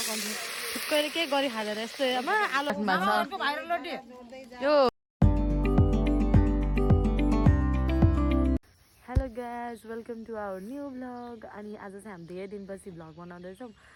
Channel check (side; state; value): both; identical; correlation 1.00